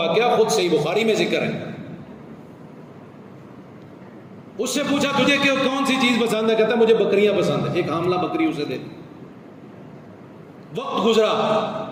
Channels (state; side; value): identical; both; correlation 1.00